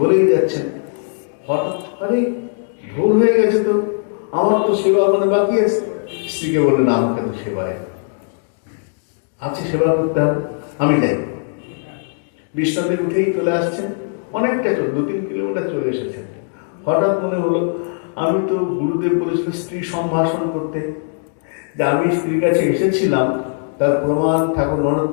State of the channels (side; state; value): right; silent; digital silence